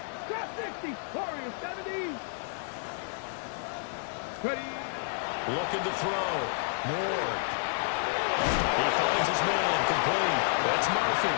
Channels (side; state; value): right; silent; digital silence